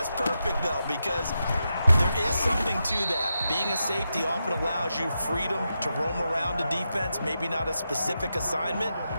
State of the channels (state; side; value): inverted; both; correlation -0.87